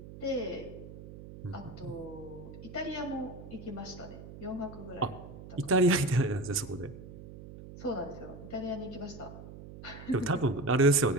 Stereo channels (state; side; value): noise; right; hum, 14 dB below the sound